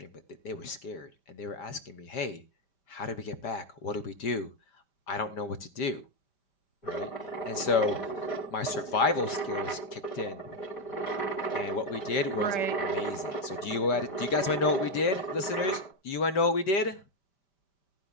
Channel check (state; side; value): late; right; 5.1 ms